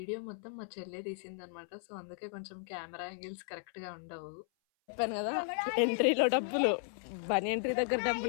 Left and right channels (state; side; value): silent; right; 54 dB below the other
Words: మొత్తం మా చెల్లె తీసిందనమాట. సో అందుకే కొంచెం కెమెరా యాంగిల్స్ కరెక్ట్గా ఉండవు. చెప్పాను కదా, ఎంట్రీలో డబ్బులు, బనీ ఎంట్రీ దగ్గర